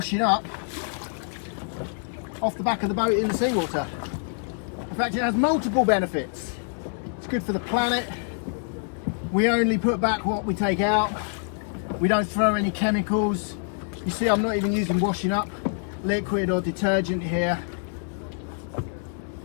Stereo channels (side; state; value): right; silent; 61 dB below the other